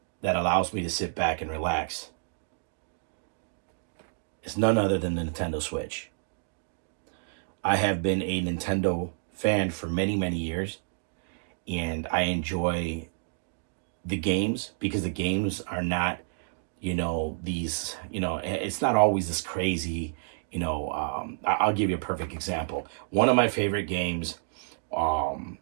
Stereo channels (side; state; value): left; silent; digital silence